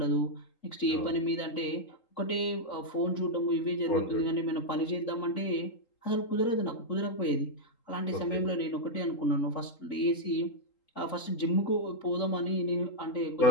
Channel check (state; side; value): late; right; 3.8 ms